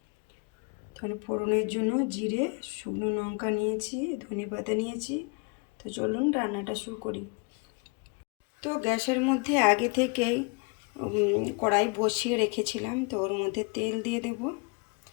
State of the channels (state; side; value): quieter; right; 32.3 dB